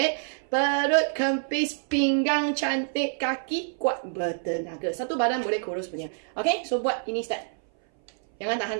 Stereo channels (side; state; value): left; silent; 59 dB below the other